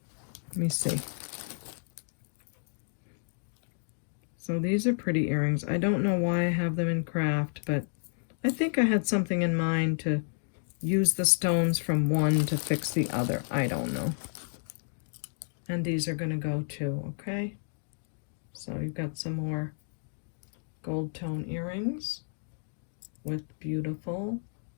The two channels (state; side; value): silent; right; digital silence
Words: Let me see. So these are pretty earrings. I don't know why I have them in craft, but I think I had something in mind to use the stones from one to fix the other. I don't know. And these are going to go too, okay? So you've got some more gold tone earrings with beautiful